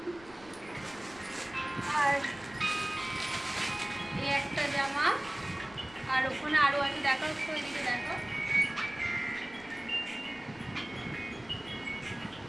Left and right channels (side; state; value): left; noise; rumble, 22 dB below the sound